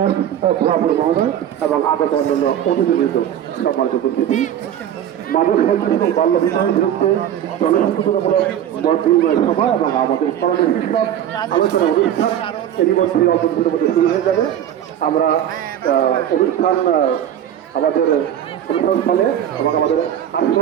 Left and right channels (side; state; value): left; quieter; 10.4 dB